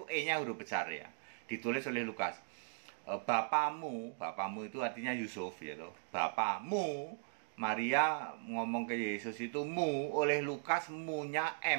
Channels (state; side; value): silent; left; digital silence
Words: E-nya huruf besar ya, ditulis oleh Lukas. Bapamu itu artinya Yusuf ya toh. Bapamu, Maria ngomong ke Yesus itu mu, oleh Lukas mu-nya,